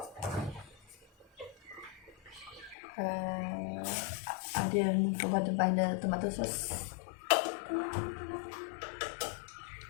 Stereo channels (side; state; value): right; drops out; at 2.8 s